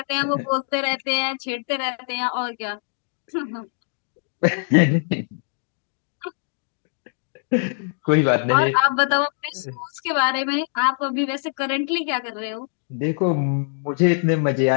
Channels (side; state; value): right; silent; digital silence